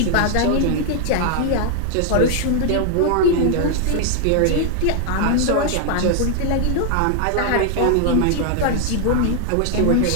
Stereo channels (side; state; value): both; different; correlation 0.00